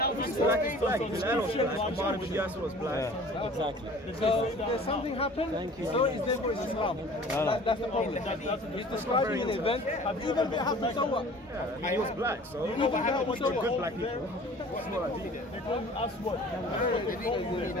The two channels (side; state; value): both; normal; correlation 0.46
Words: Black is black, Bilal was black, Omar bin Yasser was black. Yeah, exactly. So there's something happened. Thank you. So is this what is Islam? That's the problem. He's describing an event. Even if it happened, so what? Yeah, he was black, so Even if it happened, so good what? black people. That's what I did. They couldn't ask what?